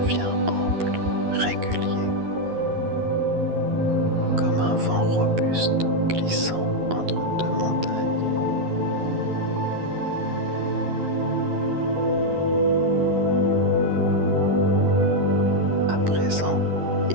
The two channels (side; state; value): left; late; 11 ms